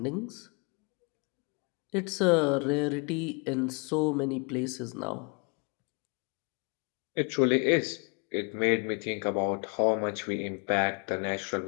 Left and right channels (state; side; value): quieter; right; 33.7 dB